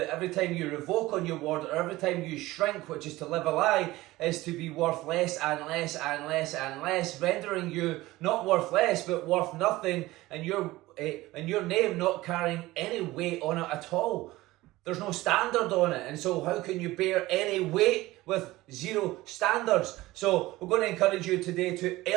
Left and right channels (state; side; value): quieter; left; 18.4 dB